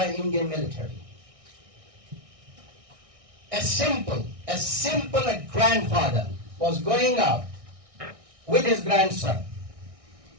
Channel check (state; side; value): late; left; 1.6 ms